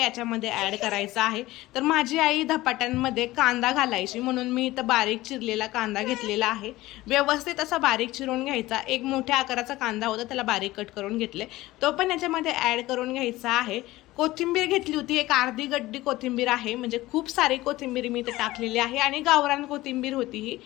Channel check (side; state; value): right; quieter; 17.9 dB